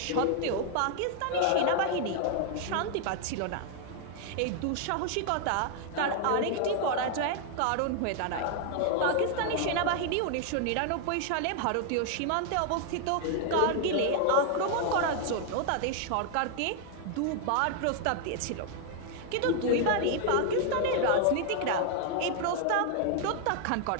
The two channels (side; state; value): both; different; correlation 0.00